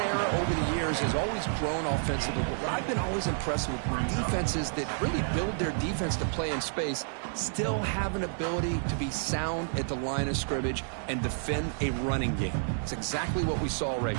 over the years has always grown offensively. But what I've been always impressed with when defenses that really build their defense to play in space still have an ability to be sound at the line of scrimmage and defend a running game. It's exactly what we saw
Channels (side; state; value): left; silent; 58 dB below the other